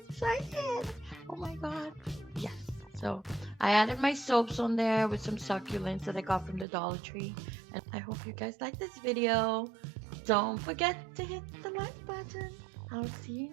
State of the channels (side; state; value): left; drops out; at 6.7 s